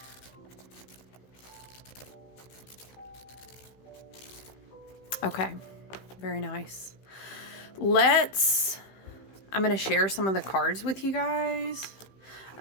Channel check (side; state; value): right; late; 16 ms